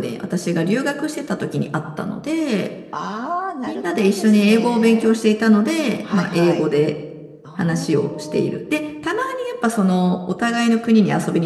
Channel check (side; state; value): both; identical; correlation 1.00